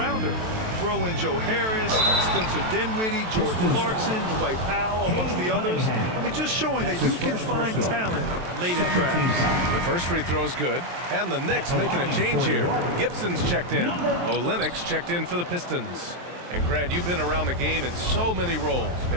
Throw in Joe Harris, Spencer Dinwiddie, Jordan Clarkson, Dwight Powell, amongst the others. I mean, just showing that you can find talent late in drafts. The first free throw is good, and the Knicks making a change here. Gibson's checked in. Olenek's checked in for the Pistons. And Grant, you've been around the game in so many roles.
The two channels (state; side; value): late; left; 23 ms